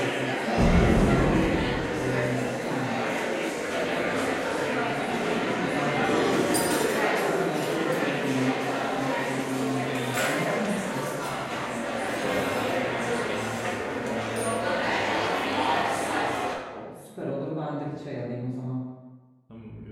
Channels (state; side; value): identical; both; correlation 1.00